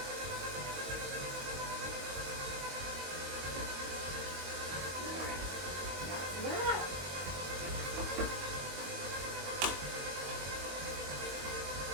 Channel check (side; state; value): left; late; 22 ms